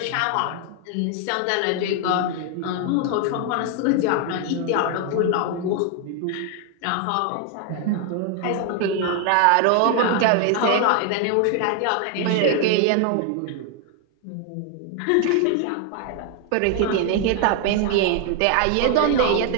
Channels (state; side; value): different; both; correlation 0.00